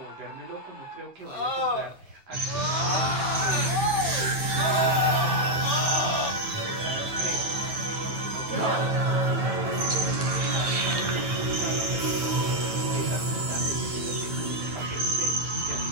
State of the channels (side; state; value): left; late; 9.2 ms